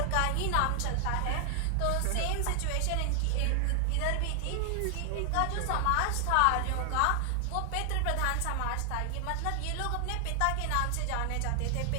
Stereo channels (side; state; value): both; different; correlation 0.00